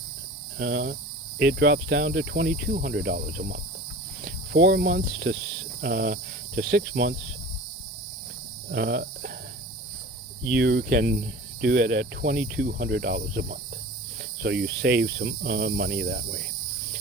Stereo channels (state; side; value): normal; both; correlation 0.38